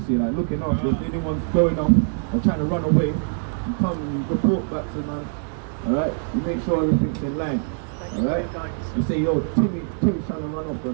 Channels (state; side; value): silent; left; digital silence